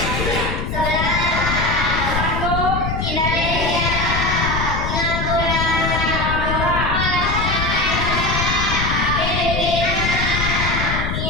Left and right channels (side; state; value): left; noise; rumble, 2 dB below the sound